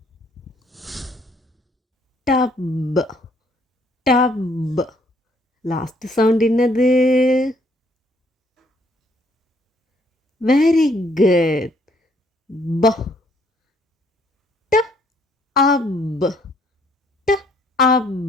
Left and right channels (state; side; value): normal; both; correlation 0.66